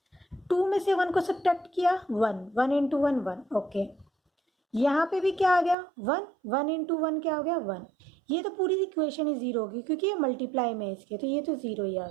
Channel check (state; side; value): drops out; left; at 5.8 s